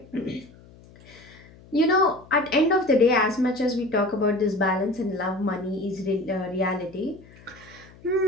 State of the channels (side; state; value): left; noise; hum, 23 dB below the sound